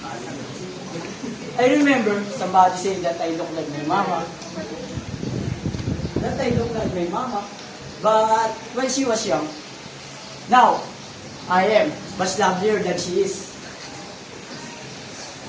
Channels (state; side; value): identical; both; correlation 1.00